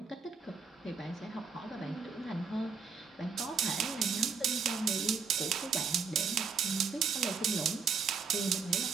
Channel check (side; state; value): left; quieter; 5.5 dB